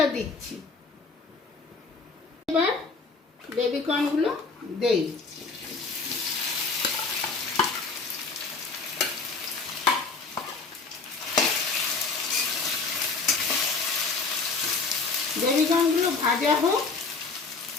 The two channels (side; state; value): right; quieter; 4.2 dB